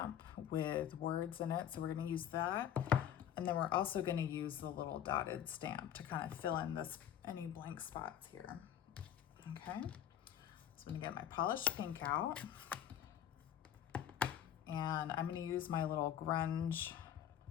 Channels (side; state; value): right; quieter; 9.9 dB